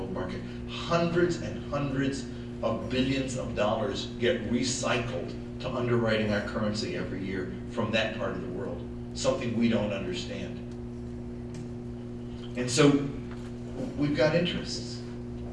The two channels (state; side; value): identical; both; correlation 1.00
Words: market. Hundreds and hundreds of billions of dollars get recycled to underwriting our currency every year from that part of the world, something we don't understand. And so we've got interests,